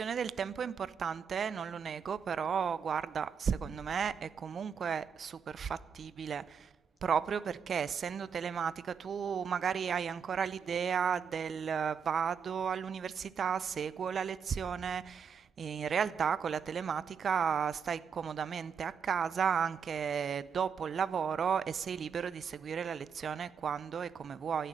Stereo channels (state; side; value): quieter; left; 6.8 dB